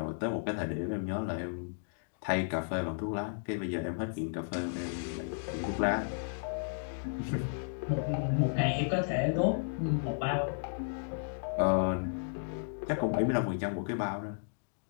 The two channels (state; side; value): silent; right; digital silence